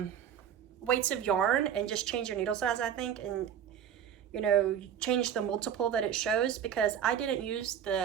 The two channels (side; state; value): left; quieter; 9.0 dB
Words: weights of yarn and just change your needle size, I think, and you know, change the multiple that it shows, because I didn't use